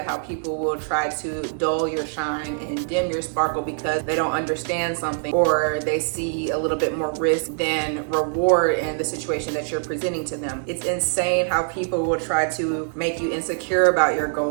how people will try to dull your shine and dim your sparkle because they don't understand something, or they see a little bit more risk than reward in the situation that you're presenting to them. It's insane how people will try to make you insecure about your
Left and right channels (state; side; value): silent; left; digital silence